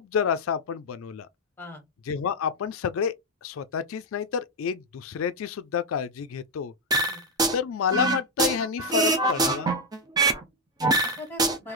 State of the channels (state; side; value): normal; both; correlation 0.02